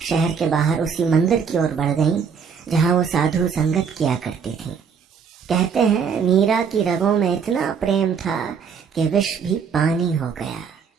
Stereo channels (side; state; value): left; quieter; 6.5 dB